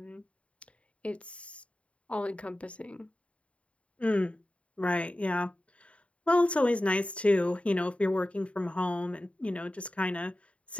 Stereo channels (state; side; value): late; right; 0.063 ms